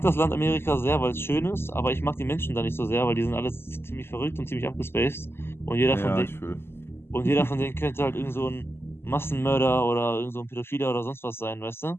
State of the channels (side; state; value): right; late; 0.12 ms